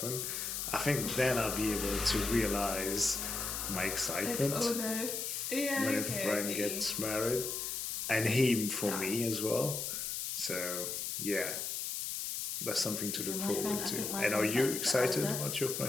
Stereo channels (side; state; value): left; noise; hiss, 3 dB below the sound